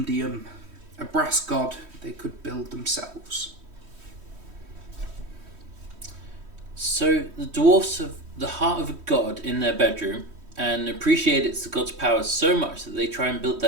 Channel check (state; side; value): late; left; 3.1 ms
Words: a brass god they could build themselves. So the dwarfs have the heart of a god in their bedroom and appreciate it's the god's powers so much that they try and build